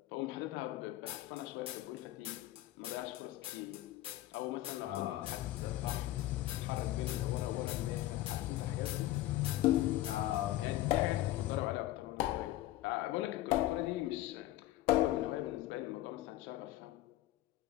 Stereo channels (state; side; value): quieter; right; 15.4 dB